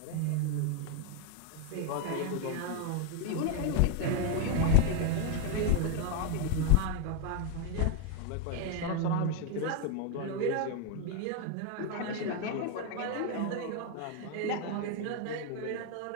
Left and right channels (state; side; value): different; both; correlation 0.01